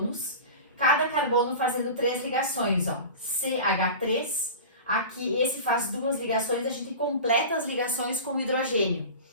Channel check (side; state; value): both; inverted; correlation -0.33